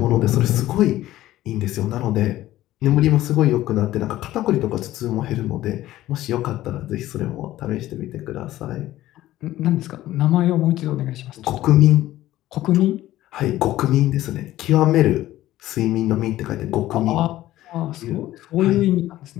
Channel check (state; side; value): quieter; right; 14.9 dB